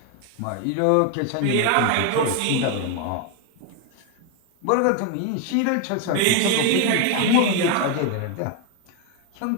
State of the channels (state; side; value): different; both; correlation 0.01